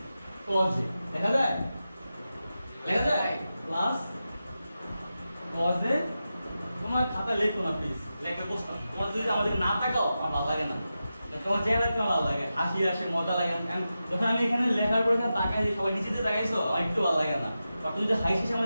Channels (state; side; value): inverted; both; correlation -0.91